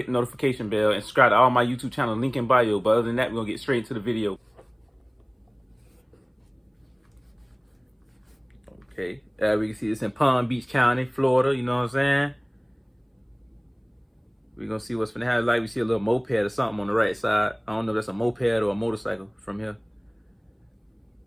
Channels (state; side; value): identical; both; correlation 1.00